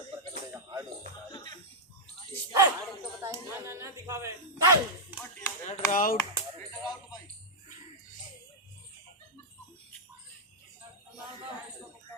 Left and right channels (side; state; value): both; normal; correlation -0.05